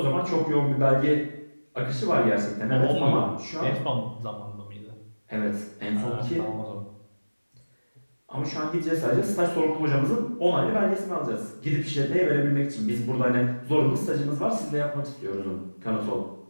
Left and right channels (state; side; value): inverted; both; correlation -1.00